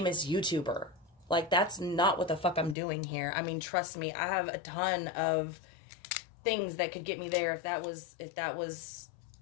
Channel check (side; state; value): right; drops out; at 2.8 s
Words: YouTuber. Like, that's not what the fuck I'm doing here. I mean, trust me, I have a ton of things that could get me there if that was